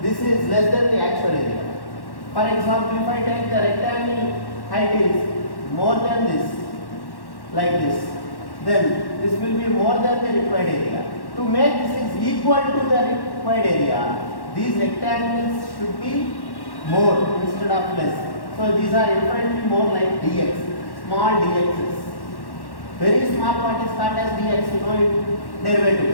this is less than the actual area. For example, if I take the rectangle height is more than this, like this, then this will be more than the required area. To make this is equal to the required area, these rectangles should be more instead of less. So these are infinitely more like dx, small dx's. Very small part is called as dx, you know in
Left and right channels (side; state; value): right; late; 1.1 ms